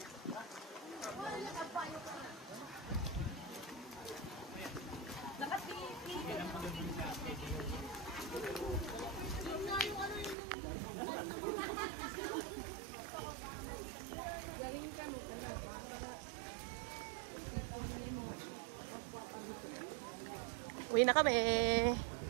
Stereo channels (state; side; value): drops out; left; at 10.4 s